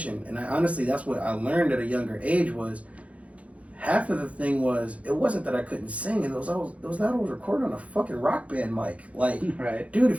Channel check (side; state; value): left; late; 0.065 ms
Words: And honestly, that's what I learned at a younger age was. Half of the thing was, it wasn't that I couldn't sing, it was that I was recording on a fucking rock band mic. Like, right. Dude,